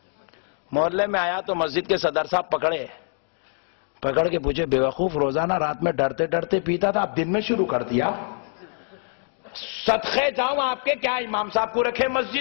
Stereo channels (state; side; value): silent; right; 62 dB below the other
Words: محلے میں آیا تو مسجد کے صدر صاحب پکڑے، پکڑ کے پوچھے بیوقوف روزانہ رات میں ڈرتے ڈرتے پیتا تھا، اب دن میں شروع کر دیا؟ صدقے جاؤں آپ کے، کیا امام صاحب کو رکھے